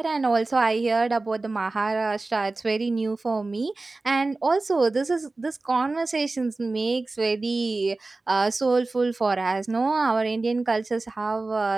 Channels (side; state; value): left; quieter; 3.3 dB